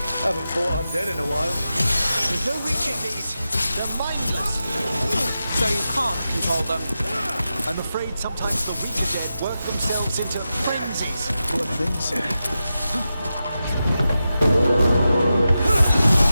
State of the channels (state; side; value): inverted; both; correlation -0.91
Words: Haven't fought undead in a while. There's no reaching these. They're mindless. So you can't control them. I'm afraid sometimes the weaker dead work themselves into frenzies. Poor things.